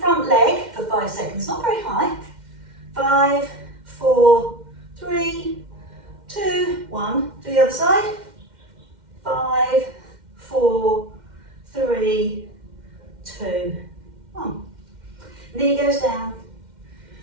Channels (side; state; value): left; late; 2.1 ms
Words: leg for 5 seconds, not very high. 5, 4, 3, 2, 1. Do the other side. 5, 4, 3, 2, 1. Knee goes down.